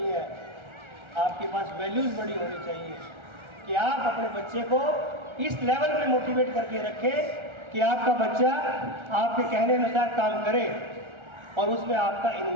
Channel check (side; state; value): left; late; 1.4 ms